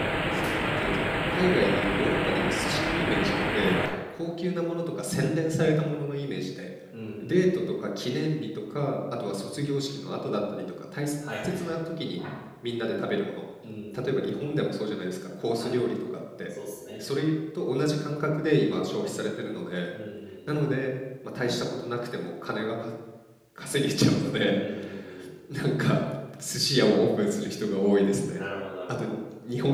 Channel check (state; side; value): identical; both; correlation 1.00